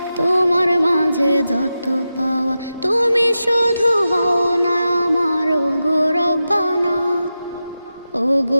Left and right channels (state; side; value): inverted; both; correlation -0.91